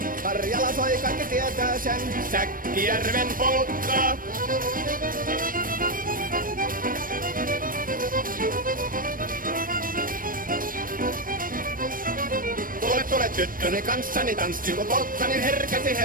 Karjala soi, kaikki tietää sen. Säkkijärven polkkaa. Tule tyttöni kanssani tanssi, kun polkkani herkäsi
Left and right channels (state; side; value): late; left; 0.41 ms